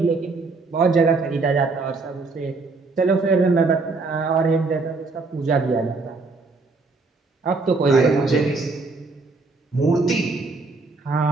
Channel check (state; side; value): quieter; left; 3.9 dB